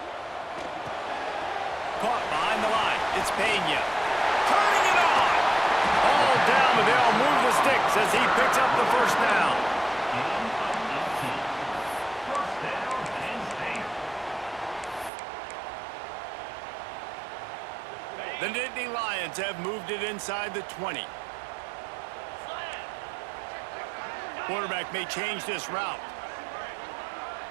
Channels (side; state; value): left; drops out; at 15.1 s